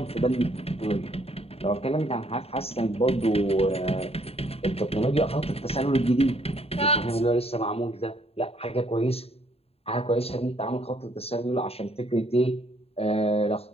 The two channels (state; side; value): late; right; 0.29 ms